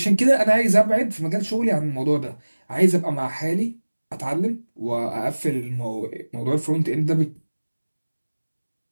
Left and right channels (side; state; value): both; inverted; correlation -1.00